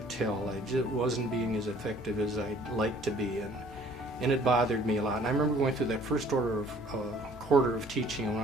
tell I just wasn't being as effective as I'd like to be, and it bothered me a lot. And I remember going through that first quarter of teaching, and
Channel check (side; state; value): both; normal; correlation 0.55